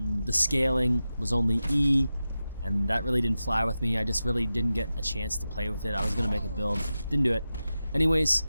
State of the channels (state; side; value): inverted; both; correlation -0.92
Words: scaling was only E, and that really didn't fly with me. I just really didn't get a chance to play with it. I was going to make a build, didn't do it. Anyways,